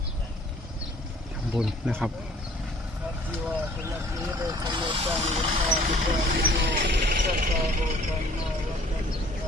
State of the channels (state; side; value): normal; both; correlation 0.55